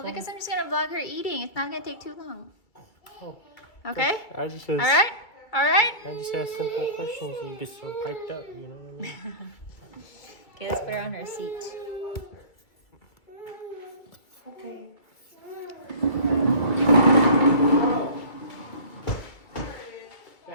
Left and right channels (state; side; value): late; right; 2.3 ms